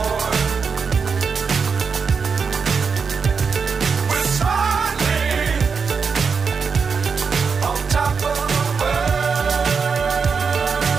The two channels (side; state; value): left; quieter; 5.5 dB